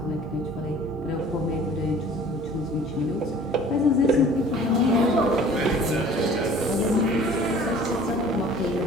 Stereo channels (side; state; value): both; normal; correlation 0.48